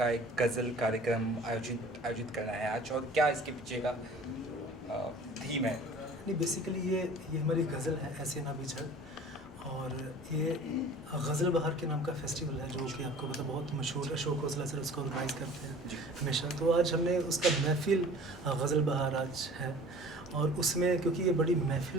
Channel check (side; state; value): both; normal; correlation 0.45